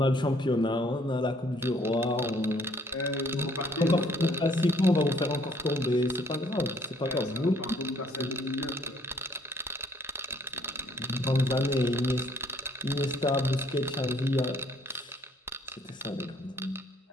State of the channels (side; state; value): both; normal; correlation 0.62